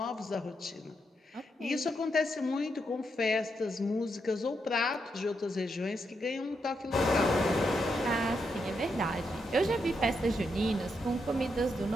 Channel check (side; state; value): both; normal; correlation 0.81